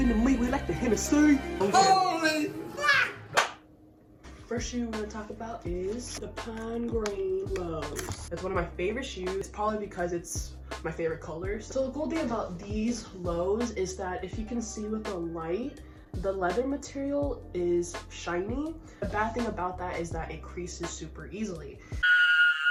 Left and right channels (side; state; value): both; identical; correlation 1.00